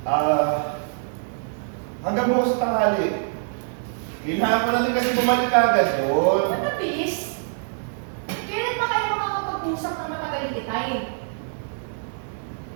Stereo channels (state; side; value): silent; left; digital silence